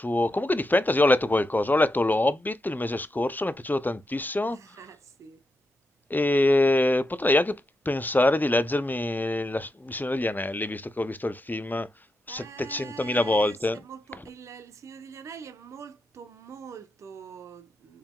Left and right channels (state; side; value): normal; both; correlation 0.85